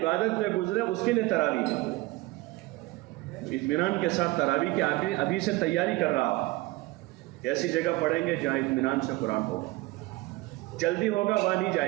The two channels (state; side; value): quieter; left; 20.6 dB